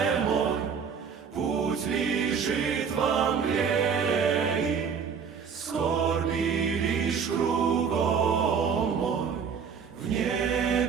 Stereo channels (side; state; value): left; quieter; 6.5 dB